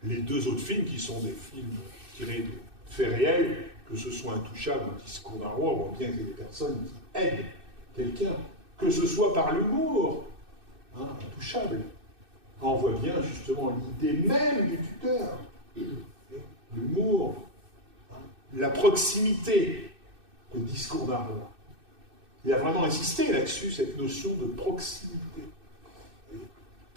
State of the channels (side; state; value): left; late; 2.6 ms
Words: les 2 autres films qui sont des films tirés de faits réels, que ce soit Intouchable ou Discours d'un roi, on voit bien qu'il y a des personnes qui aident quelqu'un, que ce soit par l'humour, Intouchable. On voit bien justement l'idée même du tuteur, l'humour, la proximité, le Discours d'un roi. Il a vraiment insisté là-dessus, cette notion de proximité,